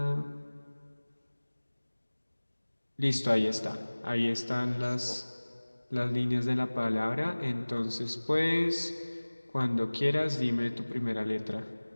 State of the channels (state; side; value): inverted; both; correlation -1.00